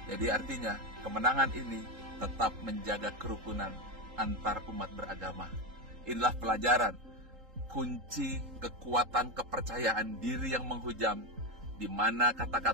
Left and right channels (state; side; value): late; left; 3.8 ms